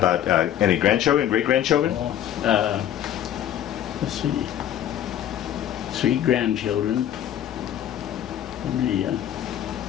any grandchildren, great-grandchildren? Well, let's see. 3 grandchildren.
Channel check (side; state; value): right; quieter; 10.9 dB